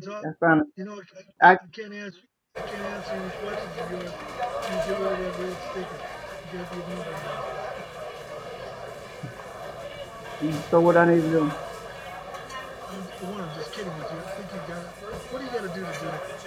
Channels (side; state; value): both; identical; correlation 1.00